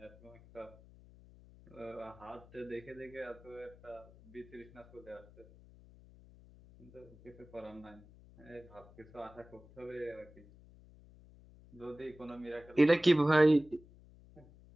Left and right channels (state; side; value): noise; left; hum, 22 dB below the sound